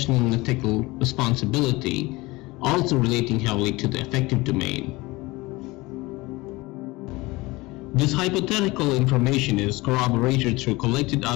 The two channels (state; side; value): quieter; right; 21.9 dB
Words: and ethical responsibility, also relating heavily to the affective domain. This hypothetical information is corroborated through collected